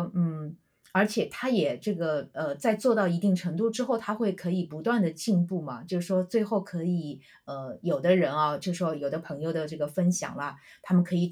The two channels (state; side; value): identical; both; correlation 1.00